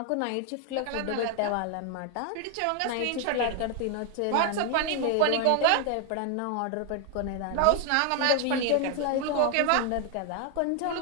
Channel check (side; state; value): both; different; correlation 0.01